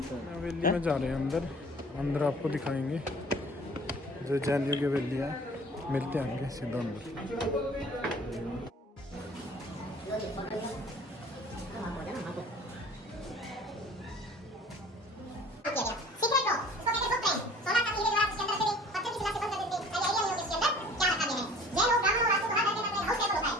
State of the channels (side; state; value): both; normal; correlation 0.48